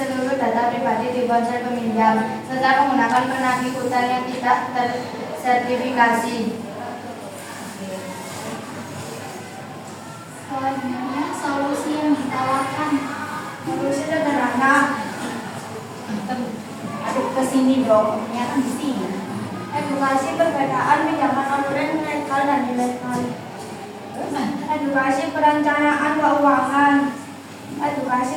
seluruh data pribadi di ponsel peminjam, serta menggunakan penagih utang yang tidak tersertifikasi.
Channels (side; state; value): both; identical; correlation 1.00